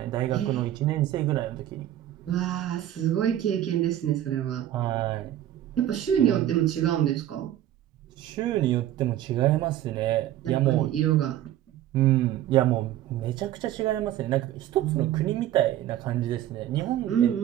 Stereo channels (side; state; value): left; quieter; 12.5 dB